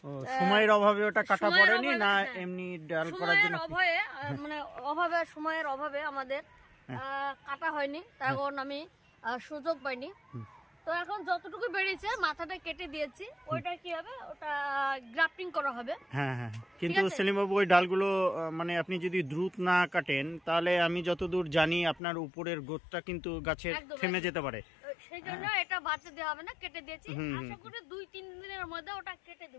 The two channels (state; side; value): drops out; right; at 22.0 s